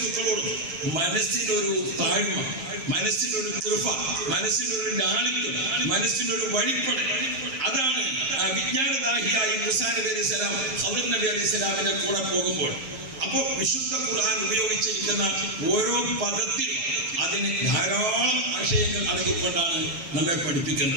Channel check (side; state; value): left; late; 7.5 ms